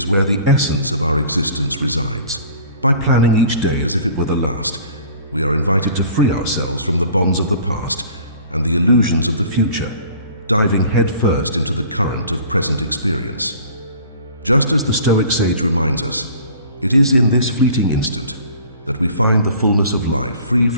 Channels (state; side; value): inverted; both; correlation -0.48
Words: where the essence of our existence resides. By planning each day as if it were the last, we are invited to free ourselves from the bonds of the past and the illusions of the future, diving headfirst into the current of present experience. Just as the Stoic sage reminds us, it is in this fleeting instant that we find the fullness of life, free